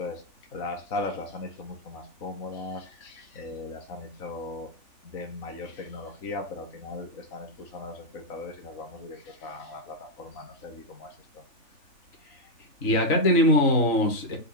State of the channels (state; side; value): late; right; 3.4 ms